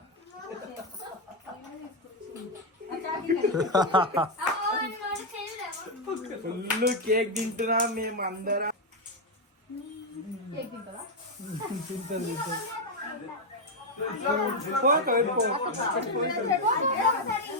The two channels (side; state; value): both; normal; correlation 0.03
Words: ఫుల్ కేక్ తింటున్నా మేము అందరం